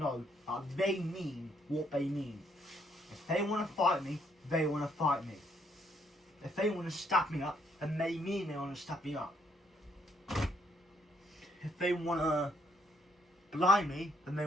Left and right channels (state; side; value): normal; both; correlation 0.70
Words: that they mean what they mean. If they want to fight me, they want to fight me. If they want to stab me up, then they mean they want to stab me up. If they want to blind me, then they